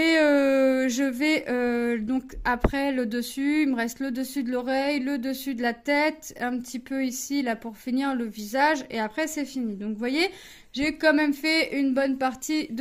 donc après le dessus, il me reste le dessus de l'oreille, le dessus de la tête, un petit peu ici là pour finir le visage et après c'est fini. Donc vous voyez, j'ai quand même fait une bonne partie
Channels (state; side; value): identical; both; correlation 1.00